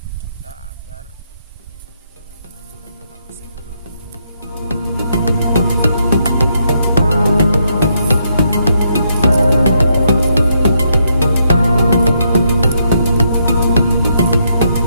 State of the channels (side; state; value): both; inverted; correlation -0.77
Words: kita agar tubuh kita tetap sehat.